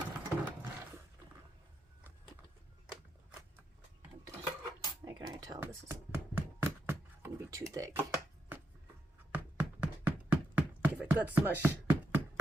I can already tell this is gonna be too thick. Give it good smush.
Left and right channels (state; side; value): normal; both; correlation 0.83